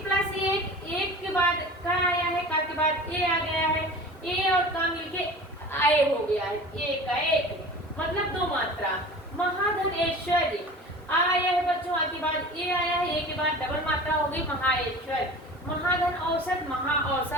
प्लस 1, 1 के बाद का आया है, का के बाद ए आ गया है, ए और का मिलके आए हो गया है, एक का एक, मतलब 2 मात्रा। महाधन ऐश्वर्य आया है बच्चों, आ के बाद ए आया है, ए के बाद डबल मात्रा हो गई महाऐश्वर्य। महाधन औसत महा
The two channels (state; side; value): normal; both; correlation 0.38